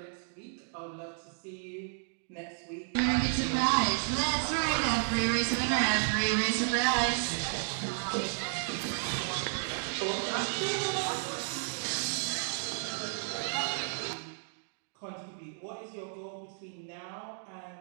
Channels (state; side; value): silent; left; digital silence